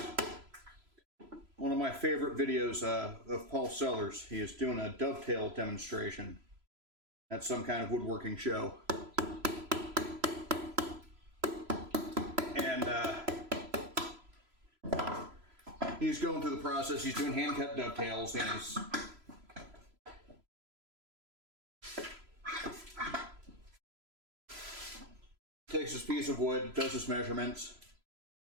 One of my favorite videos of Paul Sellers, he is doing a dovetail demonstration at some kind of woodworking show. And he's going through the process, he's doing hand-cut dovetails, and he's takes this piece of wood, does his measurements,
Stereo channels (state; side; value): late; left; 3.0 ms